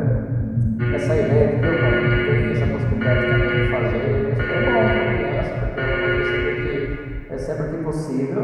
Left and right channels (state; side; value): identical; both; correlation 1.00